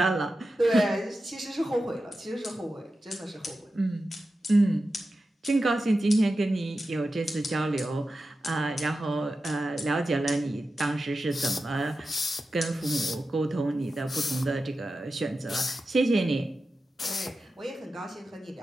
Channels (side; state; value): both; normal; correlation 0.92